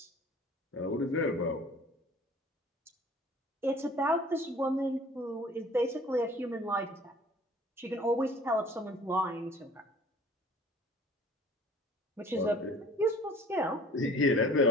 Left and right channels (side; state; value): both; normal; correlation 0.50